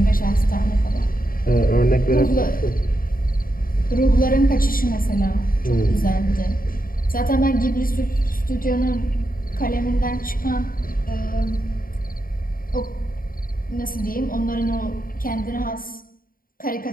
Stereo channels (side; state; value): right; late; 0.41 ms